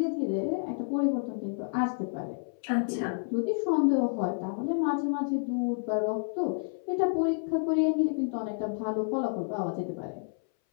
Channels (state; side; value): silent; right; 58 dB below the other